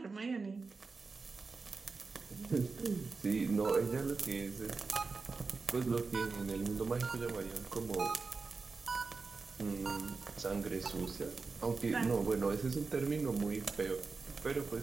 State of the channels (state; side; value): quieter; left; 4.3 dB